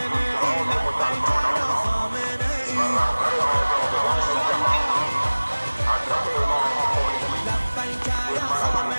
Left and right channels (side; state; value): both; inverted; correlation -1.00